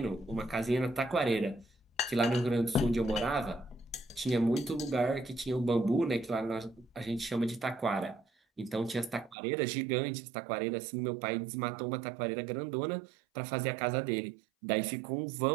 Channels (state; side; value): drops out; left; at 9.3 s